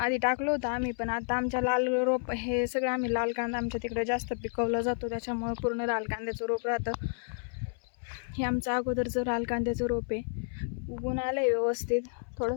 टाकलं होतं आम्ही, पण आता आमच्या लाल रोप हे सगळं आम्ही लाल कांदा आमच्या तिकडे जास्त पिकवला जातो, त्याच्यामुळे पूर्ण लाल कांद्याचं रोप राहतं. हे आमचं अगोदरचं लाल कांद्याचं रोप आहे. उगून आलं आहे व्यवस्थित.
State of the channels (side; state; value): right; silent; 57 dB below the other